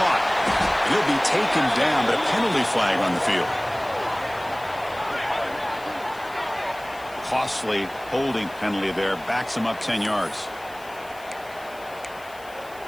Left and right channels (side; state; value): left; noise; hiss, 23 dB below the sound